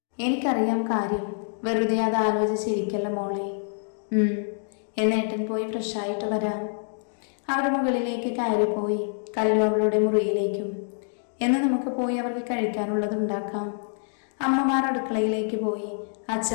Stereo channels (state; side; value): silent; right; digital silence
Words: എനിക്കറിയാം കാര്യം. വെറുതെ അത് ആലോചിച്ചിരിക്കല്ല മോളെ. എന്നേട്ടൻ പോയി ഫ്രഷായിട്ട് വരാം. അവർ മുകളിലേക്ക് കയറിപ്പോയി. കല്ലു അവളുടെ മുറിയിലേക്കും. എന്ന് നമുക്ക് പോയി അവർക്ക് കഴിക്കാനുള്ളത് ഉണ്ടാക്കാം. അമ്മമാർ അടുക്കളയിലേക്ക് പോയി.